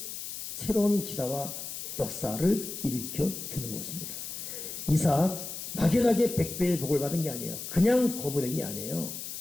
새로운 기사와 역사를 일으켜 주는 것입니다. 이삭 막연하게 100배의 복을 받은 게 아니에요. 그냥 거부된 게 아니에요.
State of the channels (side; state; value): left; noise; hiss, 8 dB below the sound